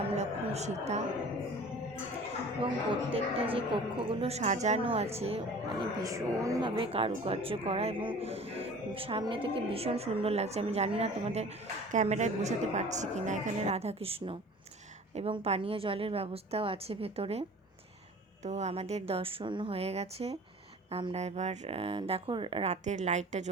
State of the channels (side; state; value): both; normal; correlation 0.43